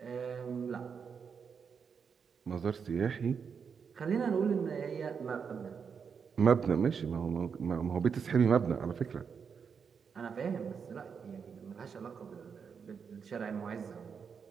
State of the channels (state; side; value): quieter; left; 6.4 dB